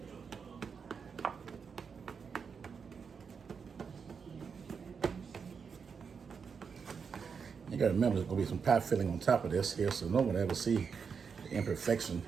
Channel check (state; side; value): quieter; left; 6.0 dB